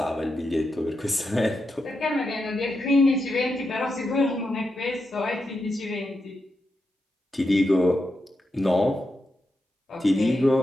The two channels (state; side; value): normal; both; correlation 0.86